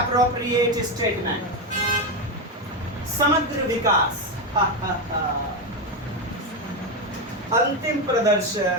statement? समग्र विकास, अंतिम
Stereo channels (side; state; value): both; normal; correlation 0.11